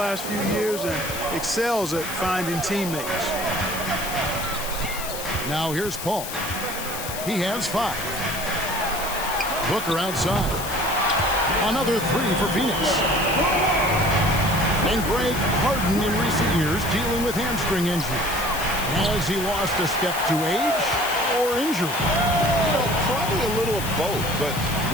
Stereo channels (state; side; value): noise; left; hiss, 8 dB below the sound